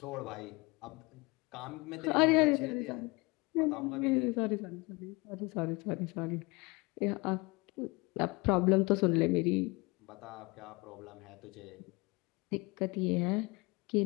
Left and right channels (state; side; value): quieter; right; 26.1 dB